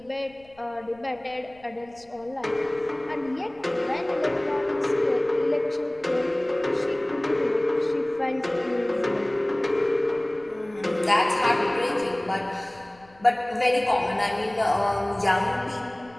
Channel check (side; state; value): left; noise; rumble, 29 dB below the sound